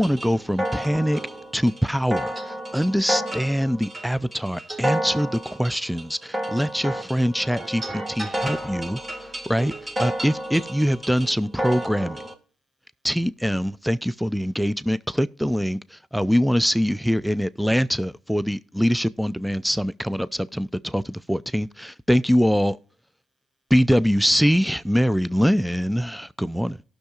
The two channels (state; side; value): normal; both; correlation 0.98